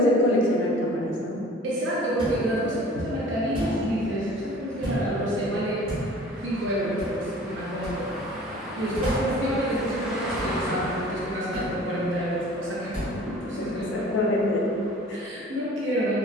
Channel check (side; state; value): both; normal; correlation 0.47